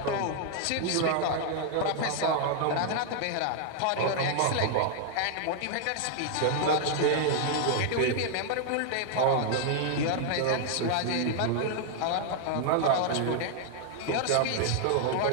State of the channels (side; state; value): both; different; correlation 0.00